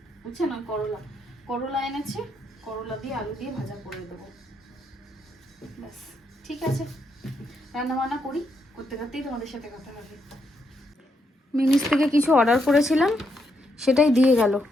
উচ্ছে না করলা, করলা এনেছে, করলা দিয়ে আলু দিয়ে ভাজা করে দেবো। ব্যাস ঠিক আছে, রান্না বান্না করি, করতে করতেই তোমাদের সাথে কথা হবে। মিনিস থেকে কিছু অর্ডার করেছিলাম, সেটাই দিয়ে গেল।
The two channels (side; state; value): both; normal; correlation 0.79